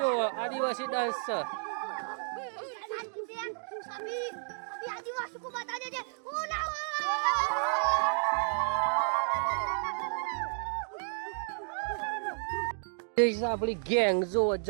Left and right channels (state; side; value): silent; left; digital silence